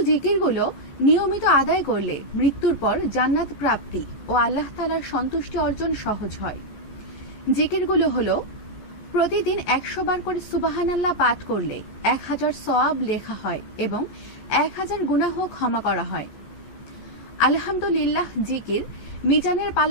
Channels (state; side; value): late; right; 14 ms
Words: জিকিরগুলো নিয়মিত আদায় করলে মৃত্যুর পর জান্নাত প্রাপ্তি ও আল্লাহ তাআলার সন্তুষ্টি অর্জন সহজ হয়। জিকিরগুলো হলো, প্রতিদিন 100 বার করে সুবহানাল্লাহ পাঠ করলে 1000 সওয়াব লেখা হয় এবং 1000 গুনাহ ক্ষমা করা হয়। আলহামদুলিল্লাহ জিকির মিজানের